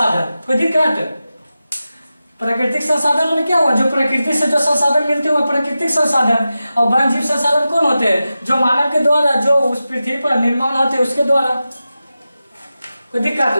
कोई दिक्कत? प्राकृतिक संसाधन में क्या हुआ? जो प्रकृति से जो संसाधन मिलते हैं वो प्राकृतिक संसाधन। और वन्य जीव संसाधन कौन होते हैं? जो मानव के द्वारा, जो उस पृथ्वी पर निर्माण होते हैं उसके द्वारा। कोई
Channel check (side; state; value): both; inverted; correlation -0.93